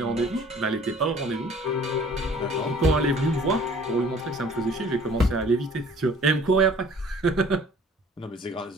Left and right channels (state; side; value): normal; both; correlation 0.52